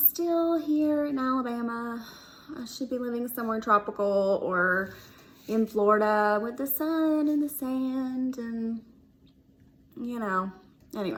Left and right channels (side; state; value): both; identical; correlation 1.00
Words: here in Alabama. I should be living somewhere tropical or in Florida with the sun and the sand and,